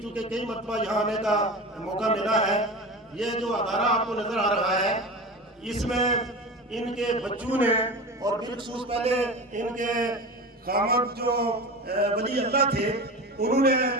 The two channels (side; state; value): both; normal; correlation 0.29